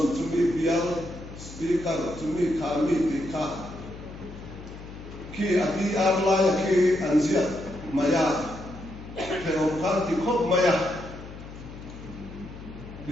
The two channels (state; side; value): noise; left; hum, 14 dB below the sound